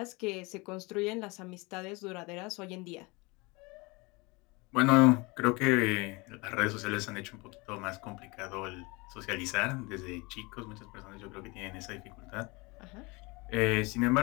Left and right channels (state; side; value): quieter; right; 26.0 dB